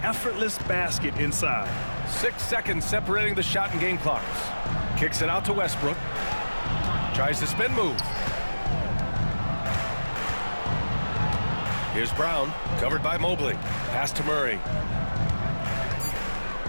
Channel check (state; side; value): inverted; both; correlation -1.00